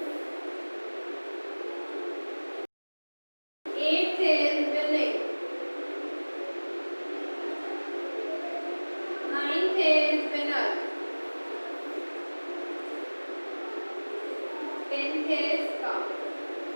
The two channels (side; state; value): both; inverted; correlation -1.00